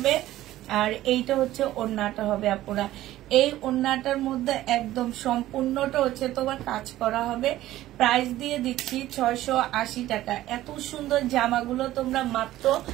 আর এইটা হচ্ছে ওড়নাটা হবে আপুরা। এই ওড়নাটার মধ্যে একদম সম্পূর্ণটা হচ্ছে তোমার কাজ করা হবে। প্রাইস দিয়ে দিচ্ছি 680 টাকা। এত সুন্দর জামাগুলো তোমরা মাত্র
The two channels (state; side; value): quieter; left; 14.8 dB